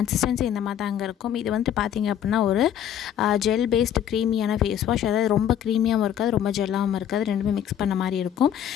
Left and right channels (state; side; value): quieter; right; 9.9 dB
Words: இந்த மாதிரி தாங்க இருக்கும். இது வந்து பார்த்தீங்க அப்படின்னா ஒரு ஜெல் பேஸ்டு க்ரீமியான ஃபேஸ் வாஷ். அதாவது ரொம்ப க்ரீமியாகவும் இருக்காது, ரொம்ப ஜெல்லாகவும் இருக்காது, ரெண்டுமே மிக்ஸ் பண்ண மாதிரி இருக்கும்.